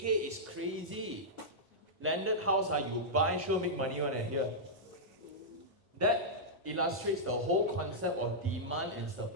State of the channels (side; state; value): both; normal; correlation -0.10